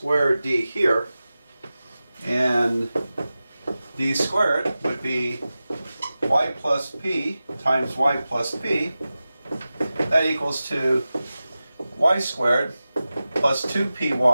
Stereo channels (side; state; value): both; inverted; correlation -0.95